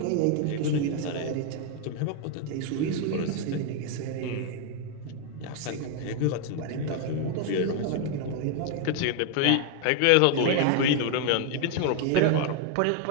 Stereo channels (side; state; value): both; different; correlation 0.01